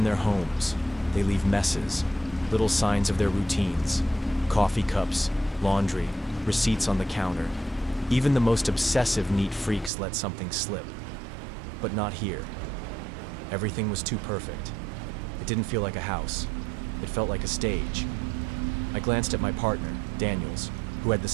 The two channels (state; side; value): drops out; left; at 9.9 s